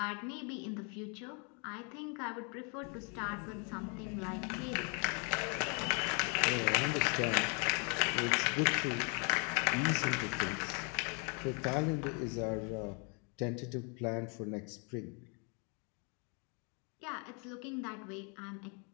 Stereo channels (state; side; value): quieter; right; 36.0 dB